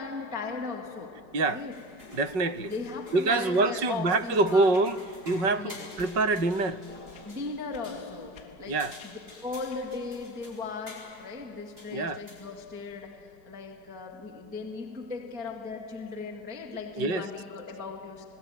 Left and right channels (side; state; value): left; late; 4.8 ms